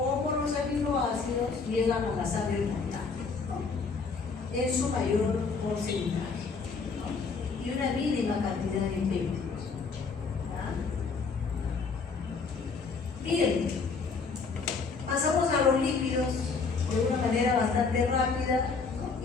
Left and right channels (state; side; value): quieter; right; 4.8 dB